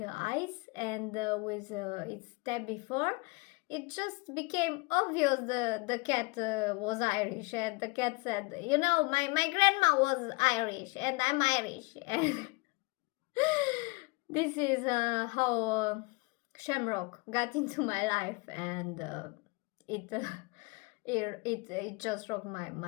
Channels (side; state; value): right; quieter; 27.3 dB